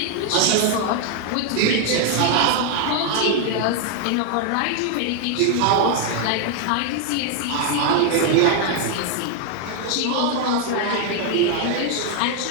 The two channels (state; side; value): different; both; correlation 0.00